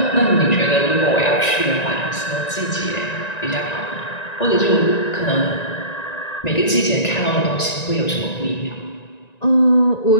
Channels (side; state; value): right; late; 1.9 ms